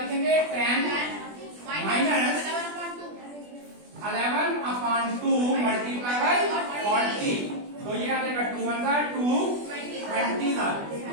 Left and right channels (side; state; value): left; late; 20 ms